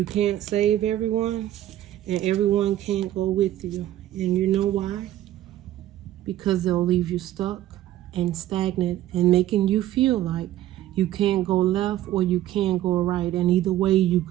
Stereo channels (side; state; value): left; quieter; 13.4 dB